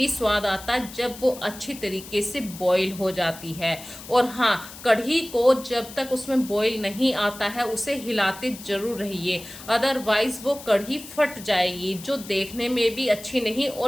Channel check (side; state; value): left; noise; hiss, 15 dB below the sound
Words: स्वाद आता है जब वो अच्छी तरीके से बॉईल हो जाती है। और हाँ, कढ़ी को जब तक उसमें बॉईल नहीं आता है उसे हिलाते जरूर रहिए, अदरवाइज वो कढ़ी फट जाएगी, जो देखने में भी अच्छी नहीं